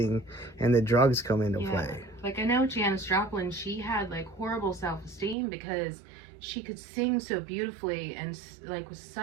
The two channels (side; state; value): left; drops out; at 5.4 s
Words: and the drugs come into play. Like I know Janis Joplin, she had like horrible self-esteem because she could sing so beautifully and like with